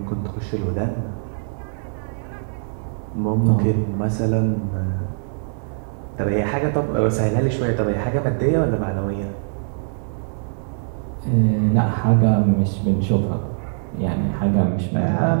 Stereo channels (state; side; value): silent; left; digital silence